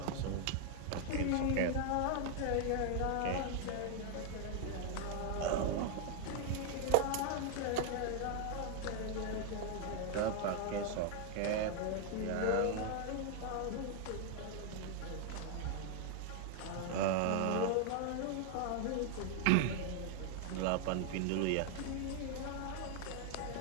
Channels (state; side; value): different; both; correlation 0.00